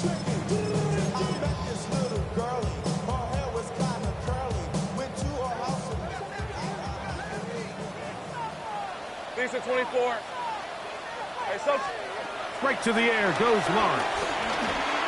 Decent 24. Hey, so Right to the air goes Lawrence.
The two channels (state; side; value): identical; both; correlation 1.00